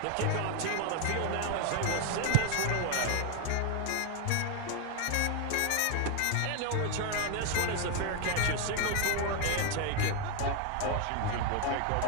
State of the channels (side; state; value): both; different; correlation 0.01